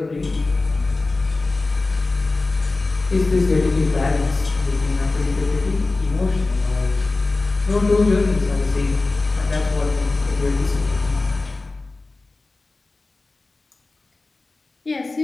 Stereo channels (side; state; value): right; quieter; 3.4 dB